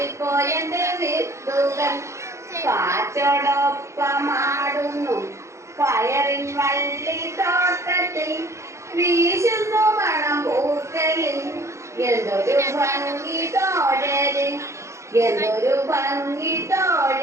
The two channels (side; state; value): left; late; 0.14 ms